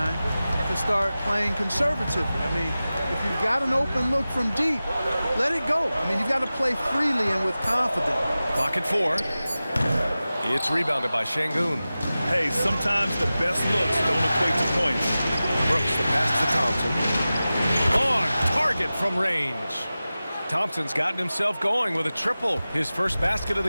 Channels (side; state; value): both; inverted; correlation -0.96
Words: to start playing conservatively. I mean, if you've got an open look from deep, let it go. I mean, you've got to play freely and with confidence. Clock at 4. It's rebounded by Şengün. Hey, sometimes the best looks don't equate to points. Brooks the pass to Thompson. On target from range. Thompson's gotten himself going with a triple, his first basket of